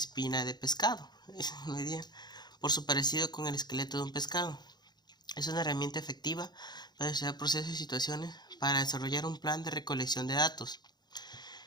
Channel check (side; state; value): right; late; 0.20 ms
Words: de pescado, por su parecido con el esqueleto de un pescado. Es una herramienta efectiva para estudiar procesos y situaciones para desarrollar un plan de recolección de datos.